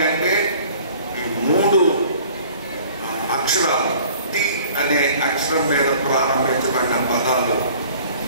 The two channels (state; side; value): inverted; both; correlation -0.50